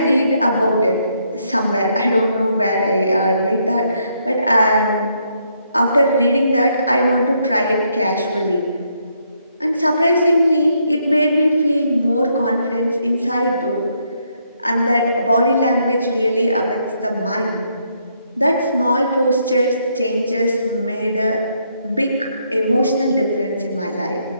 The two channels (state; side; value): inverted; both; correlation -0.74